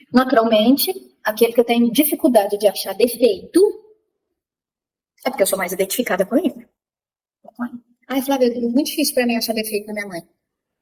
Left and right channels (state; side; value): identical; both; correlation 1.00